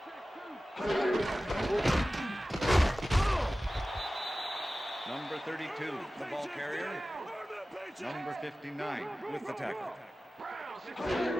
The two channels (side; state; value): both; normal; correlation 0.96